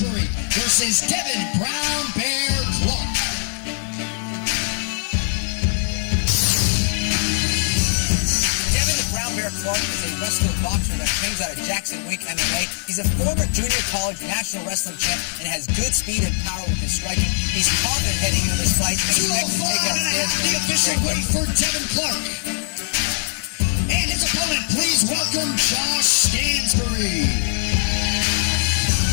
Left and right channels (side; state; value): right; silent; 65 dB below the other